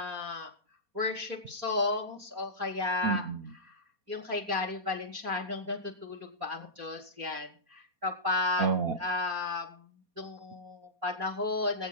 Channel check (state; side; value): late; left; 4.2 ms